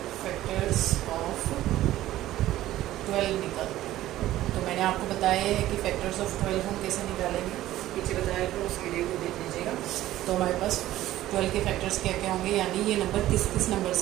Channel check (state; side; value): quieter; left; 14.6 dB